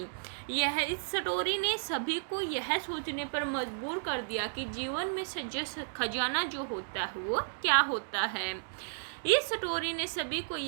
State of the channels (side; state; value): left; silent; digital silence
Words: इस स्टोरी ने सभी को यह सोचने पर मजबूर कर दिया कि जीवन में सच्चा खजाना जो होता है वो क्या होता है। इस स्टोरी ने सभी को